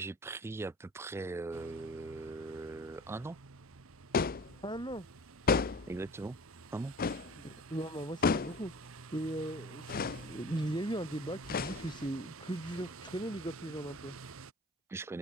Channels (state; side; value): normal; both; correlation 0.42